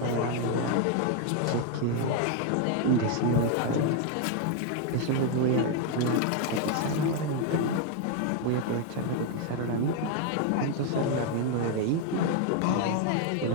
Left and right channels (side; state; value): both; different; correlation 0.01